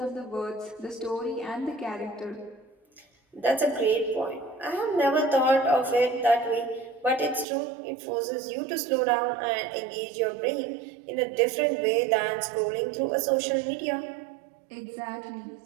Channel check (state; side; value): drops out; left; at 7.5 s